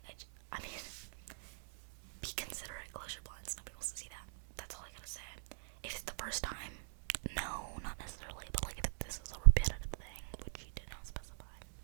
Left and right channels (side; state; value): left; silent; digital silence